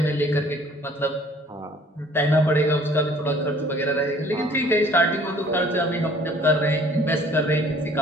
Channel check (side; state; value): both; normal; correlation 0.55